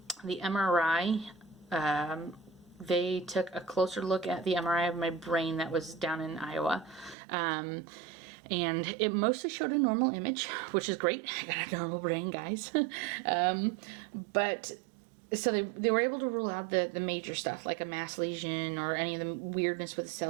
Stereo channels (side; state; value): left; drops out; at 7.2 s